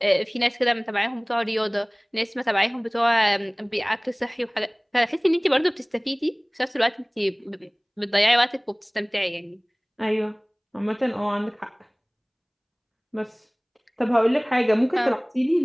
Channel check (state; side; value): identical; both; correlation 1.00